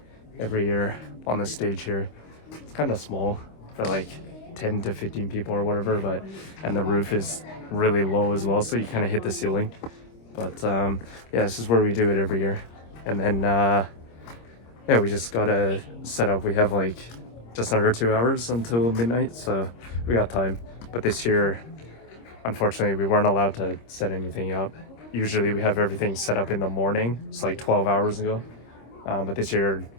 every year on the stage here. It's kind of small for like 10 to 15 people or whatever, and the roof is really low as well, so you kind of hit the ceiling. But yeah, this is where we do it every year. And then yeah, we just gotta set up. We have like just under 2 hours until midnight, so we got time. But this year, unfortunately, we weren't allowed to set anything up. Usually we have everything set up in the morning. It's like 12 hours ago. But this year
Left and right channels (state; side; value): late; right; 26 ms